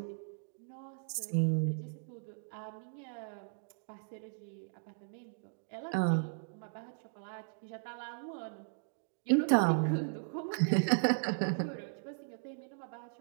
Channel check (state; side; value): silent; left; digital silence